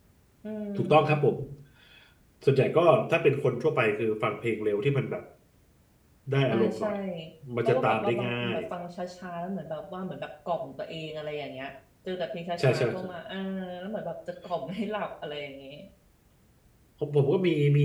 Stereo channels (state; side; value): identical; both; correlation 1.00